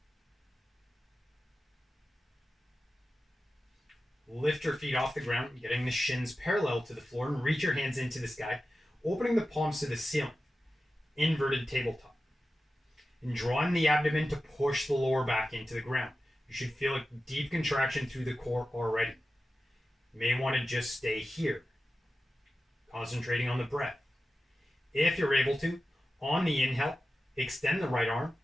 Lift your feet off the ground, getting the shins parallel to the floor, and reach your hands into the sky, opening the palms to the ceiling. Inverted tabletop. And drawing the abdomen to push the lower back into the ground. You should feel a deep contraction through the core already. You may want to just stay here, concentrating on the breath. If you're able to, on the inhale, extend the right arm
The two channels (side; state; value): both; normal; correlation 0.93